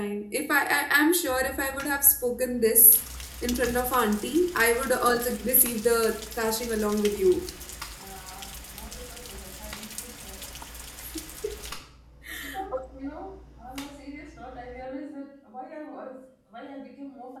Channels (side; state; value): both; identical; correlation 1.00